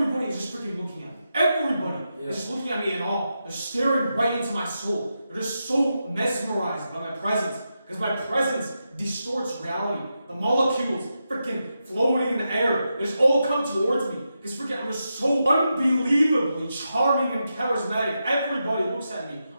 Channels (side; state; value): both; inverted; correlation -0.87